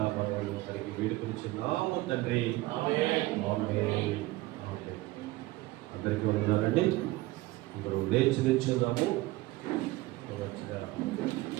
తనకి వేడుకొనిచున్నాము తండ్రి. ఆమేన్. అందరికీ ఉన్నారండి. అందరూ లేచి నిల్చుందాము.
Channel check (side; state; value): left; quieter; 19.0 dB